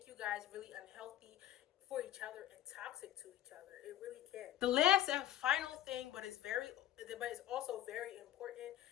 you guys really unhealthy for each other and toxic to each other. It really can. The last and final thing, but it's also very important,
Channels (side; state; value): right; quieter; 12.9 dB